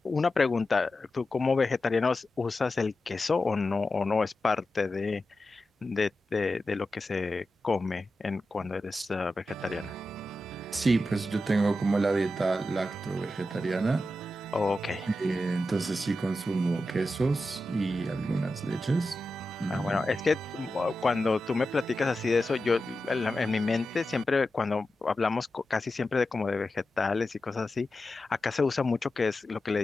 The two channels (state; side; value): normal; both; correlation 0.91